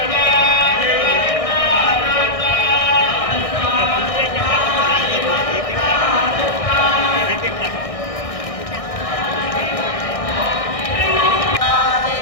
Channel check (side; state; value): right; late; 1.6 ms